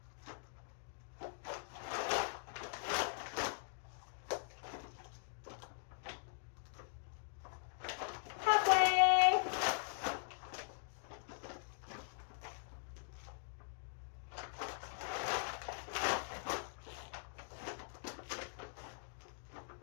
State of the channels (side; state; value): right; silent; digital silence